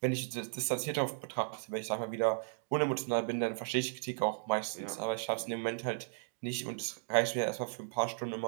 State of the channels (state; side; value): silent; left; digital silence